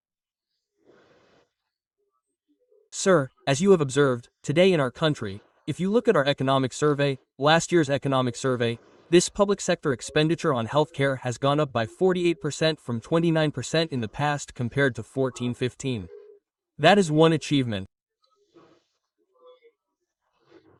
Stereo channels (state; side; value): identical; both; correlation 1.00